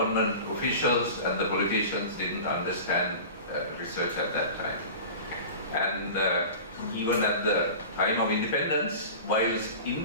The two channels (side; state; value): both; inverted; correlation -0.35